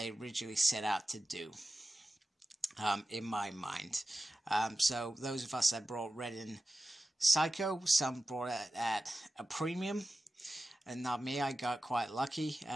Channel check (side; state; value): both; normal; correlation 0.94